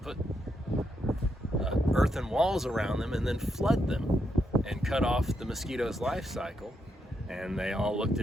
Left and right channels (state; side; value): normal; both; correlation 0.81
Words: put earthen walls around them, and then flood them and cut off the mosquito's life cycle? And they all looked